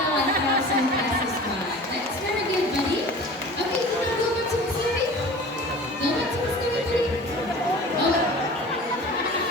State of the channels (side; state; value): both; normal; correlation 0.40